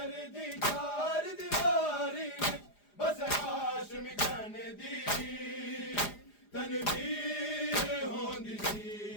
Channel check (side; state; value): right; late; 4.9 ms